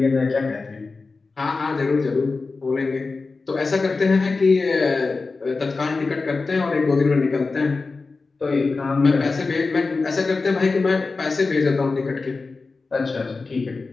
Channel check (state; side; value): quieter; right; 4.0 dB